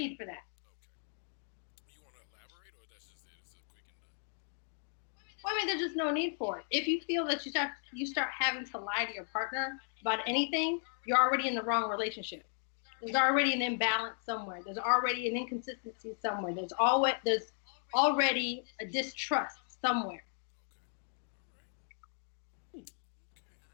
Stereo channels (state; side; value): silent; right; 54 dB below the other